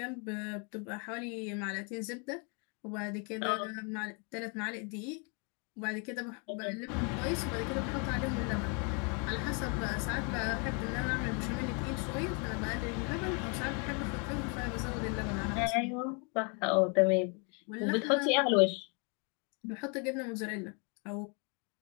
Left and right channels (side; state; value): right; quieter; 36.0 dB